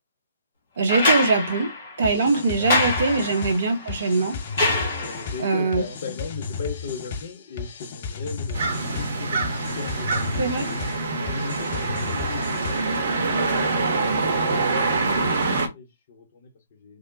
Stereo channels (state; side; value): inverted; both; correlation -0.65